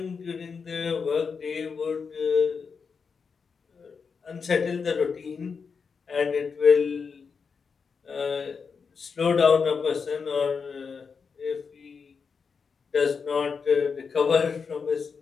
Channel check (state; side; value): quieter; right; 5.6 dB